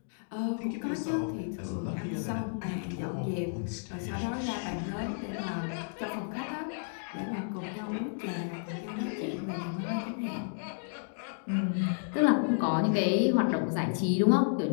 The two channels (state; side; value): silent; right; digital silence